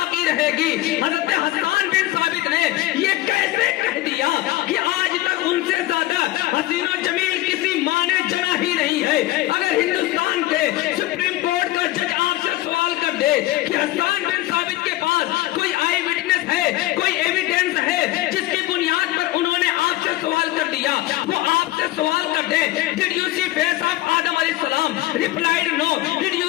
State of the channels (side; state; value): right; quieter; 16.8 dB